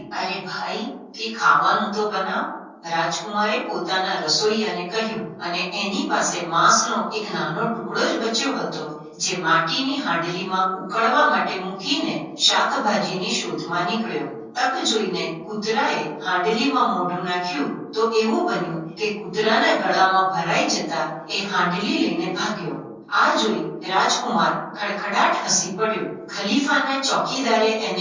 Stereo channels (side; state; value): both; identical; correlation 1.00